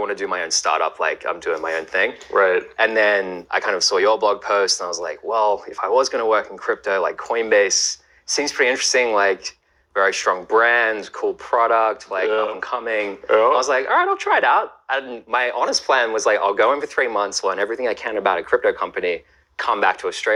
to do my own startup. Like, I'm doing my own thing. Right. And then I kind of saw your blog post and I was like, well, if I was going to work in crypto, like Coinbase seems pretty interesting. Like, very strong brand, cool product, like up and coming. I was like, all right, I'll try it out. And my honest plan was like, I'll go in for 3 months, learn everything I can about a crypto company, come back to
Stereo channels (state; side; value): identical; both; correlation 1.00